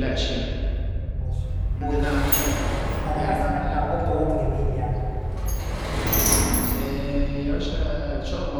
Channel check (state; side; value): identical; both; correlation 1.00